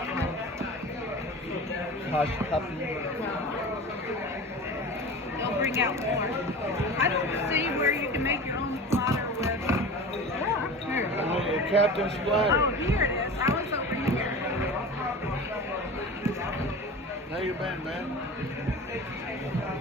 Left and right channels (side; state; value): both; normal; correlation 0.34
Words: one. Hush puppy. They'll bring out more. I don't see where you can make your own platter with. Here. Captain Oh, Splatter. here it is. I was over here. How you been, man?